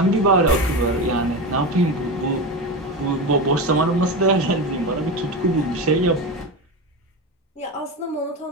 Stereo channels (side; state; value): both; normal; correlation 0.20